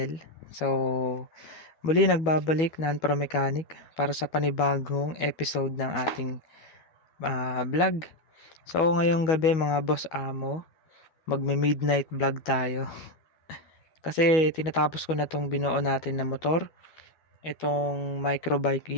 So, muli nagbabalik Pro Mechanic para sa panibagong episode ng ating vlog. So, ngayong gabi mga boss amo, magme-midnight vlog tayo. Kasi tinatapos ko na tong binuo natin na motor, itong Microbike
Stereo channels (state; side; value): late; right; 12 ms